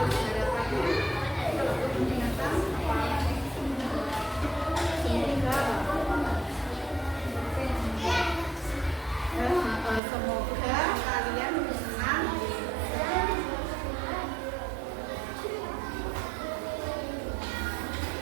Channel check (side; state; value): left; drops out; at 10.0 s